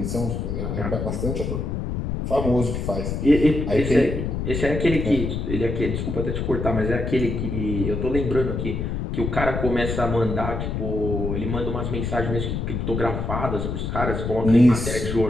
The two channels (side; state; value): left; noise; rumble, 3 dB below the sound